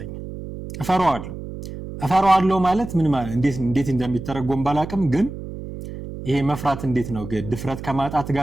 እፈራዋለሁ ማለት ምን ማለት እንዴት እንደሚተረጎም ባላቅም ግን ይሄ መፍራት እንዴት ነው? ድፍረት ከማጣት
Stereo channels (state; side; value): noise; right; hum, 10 dB below the sound